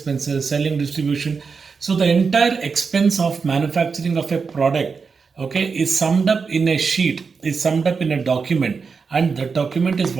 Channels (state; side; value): quieter; left; 5.2 dB